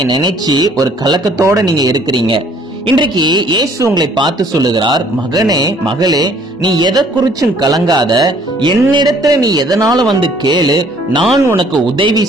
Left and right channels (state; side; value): normal; both; correlation 0.59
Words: நினைச்சு ஒரு கலக்கத்தோட நீங்க இருக்கிறீங்க. இன்றைக்கு இயேசு உங்களை பார்த்து சொல்லுகிறார், மகனே மகளே, நீ எதை குறிச்சும் கலங்காத, என்னிடத்துல நீ எதனால வந்து கேளு, நான் உனக்கு உதவி